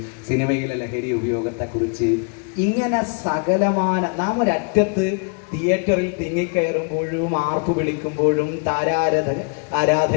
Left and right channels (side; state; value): right; quieter; 37.7 dB